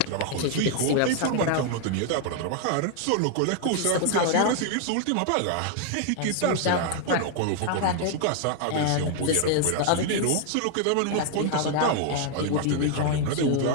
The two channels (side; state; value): both; different; correlation 0.00